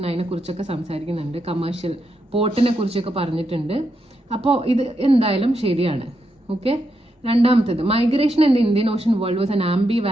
അതിനെക്കുറിച്ചൊക്കെ സംസാരിക്കുന്നുണ്ട്, കമേഴ്ഷ്യൽ പോർട്ടിനെ കുറിച്ചൊക്കെ പറഞ്ഞിട്ടുണ്ട്. അപ്പോൾ ഇത് എന്തായാലും ശരിയാണ്. ഓക്കെ, രണ്ടാമത്തേത് migration in the Indian Ocean world was an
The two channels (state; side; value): normal; both; correlation 0.83